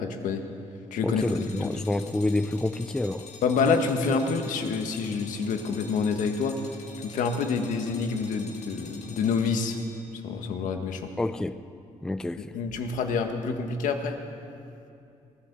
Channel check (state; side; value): quieter; right; 3.8 dB